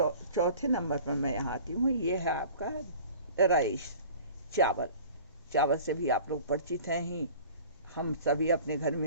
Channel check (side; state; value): both; inverted; correlation -0.45